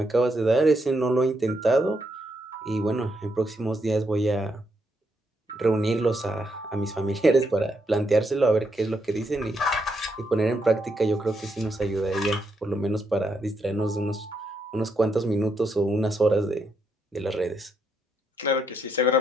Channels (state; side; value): normal; both; correlation 0.79